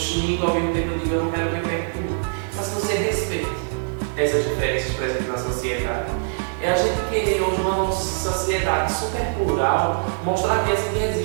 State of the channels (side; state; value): left; silent; digital silence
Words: ao mesmo tempo eu digo eu não quero ver perto de mim. Mas que você respeite essas diferenças presentes na sociedade. É a gente querer hoje uma sociedade super plural, mostrar a criança que